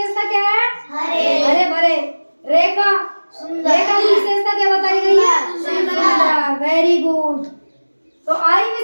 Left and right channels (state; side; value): inverted; both; correlation -1.00